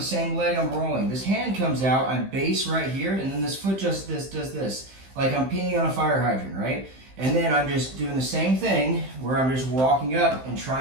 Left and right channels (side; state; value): left; late; 15 ms